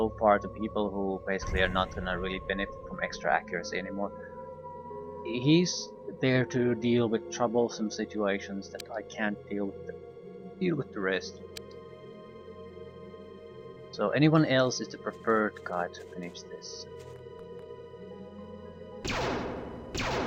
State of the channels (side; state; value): both; identical; correlation 1.00